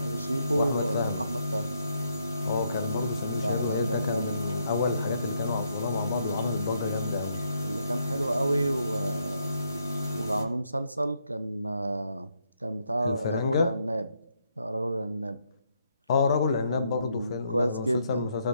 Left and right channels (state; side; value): inverted; both; correlation -0.76